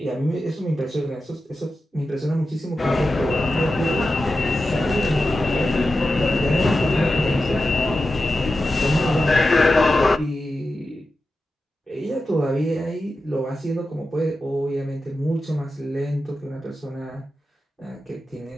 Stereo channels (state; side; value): normal; both; correlation 0.91